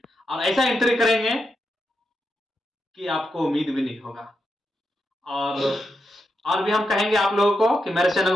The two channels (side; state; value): both; normal; correlation 0.85